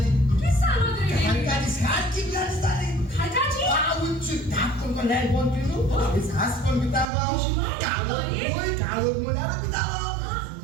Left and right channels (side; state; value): left; drops out; at 7.1 s